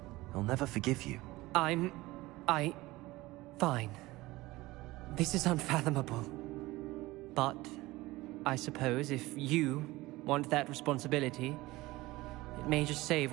he'll never forgive you. Fine. This is unfathomable. But I suppose if you want that responsibility, it may just save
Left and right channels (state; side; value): quieter; left; 19.5 dB